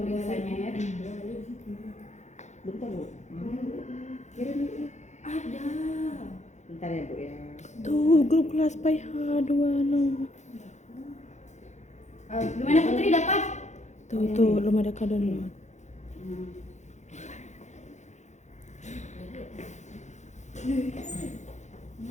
ya. Bentar Bu. Ada. Bentar ya Bu ya. Tuh grup kelas PH26. Gimana Putri dapat? Tuh belum ada download.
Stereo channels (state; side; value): late; right; 0.34 ms